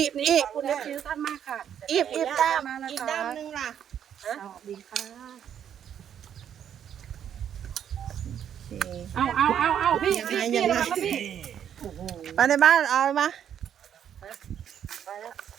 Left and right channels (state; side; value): quieter; left; 9.2 dB